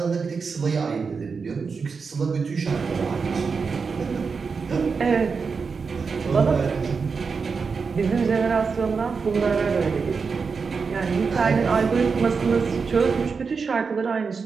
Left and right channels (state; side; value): quieter; left; 5.2 dB